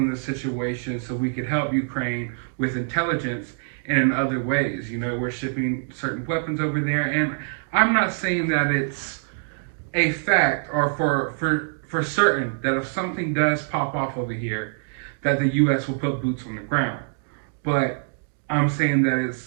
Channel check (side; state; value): left; silent; digital silence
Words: the situation so we could help Ukraine with intelligence and in other ways. You know, we're shipping certain weapons over there, and I'm not saying that it's a fact or for certain that if something does pop off over here, that the U.S. will put boots on the ground. But I'm saying that